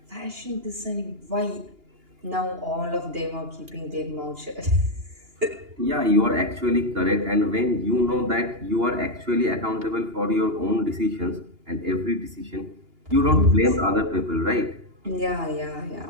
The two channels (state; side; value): late; left; 2.8 ms